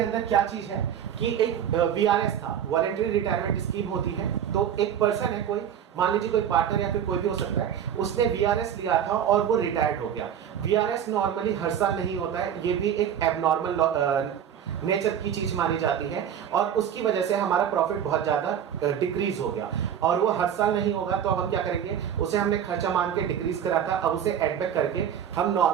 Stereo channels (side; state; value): left; quieter; 9.1 dB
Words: क्या चीज है कि एक VRS था, वॉलंटरी रिटायरमेंट स्कीम होती है। तो एक पर्सन है, कोई मान लीजिए कोई पार्टनर या फिर कोई भी हो सकता है, उसने VRS लिया था और वो रिटायर्ड हो गया। VRS नॉर्मली हर साल नहीं होता है, ये भी एक एबनॉर्मल नेचर की चीज मानी जाती है और उसकी वजह से हमारा प्रॉफिट बहुत ज्यादा डिक्रीज हो गया और वो हर साल नहीं होगा। तो अब हम क्या करेंगे, उसे हमने खर्चा मान के डिक्रीज करा था, अब उसे एड बैक करके हम